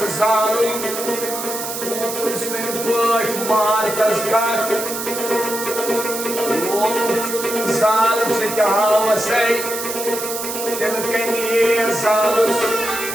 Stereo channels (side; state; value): right; noise; hiss, 6 dB below the sound